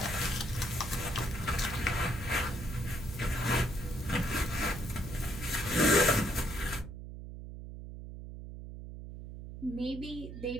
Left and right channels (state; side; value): noise; right; hum, 10 dB below the sound